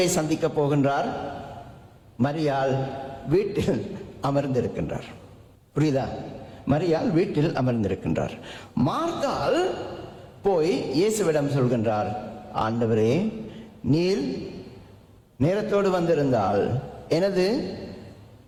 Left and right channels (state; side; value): identical; both; correlation 1.00